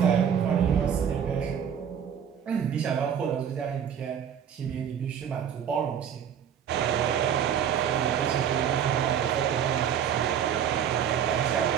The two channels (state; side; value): quieter; left; 8.5 dB